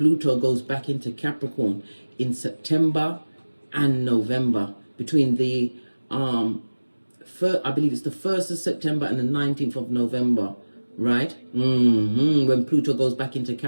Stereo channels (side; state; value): both; inverted; correlation -1.00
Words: goes back into Capricorn in September and November. Between the, I believe it's the 1st of September and the 19th of November. Right? When Pluto goes back into